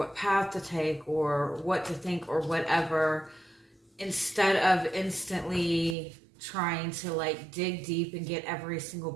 path to take or what to think or whatever, instead of instantly trying to like dig deep and get every single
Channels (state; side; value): drops out; left; at 6.0 s